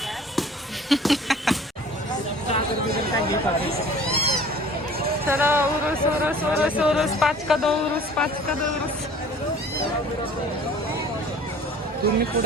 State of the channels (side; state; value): both; normal; correlation 0.48